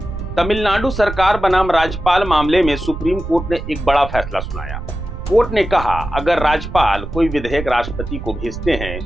तमिलनाडु सरकार बनाम राज्यपाल मामले में सुप्रीम कोर्ट ने एक बड़ा फैसला सुनाया। कोर्ट ने कहा, अगर राज्यपाल कोई विधेयक राष्ट्रपति को भेजते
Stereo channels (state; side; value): noise; right; rumble, 8 dB below the sound